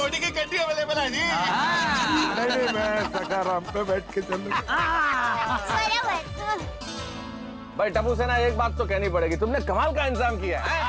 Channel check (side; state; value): both; identical; correlation 1.00